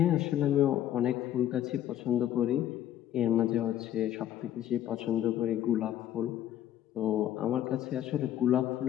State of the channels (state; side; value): quieter; right; 11.6 dB